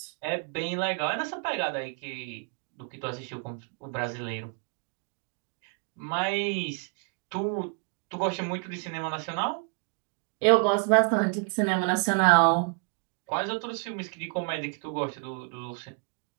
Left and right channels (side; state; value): left; quieter; 37.2 dB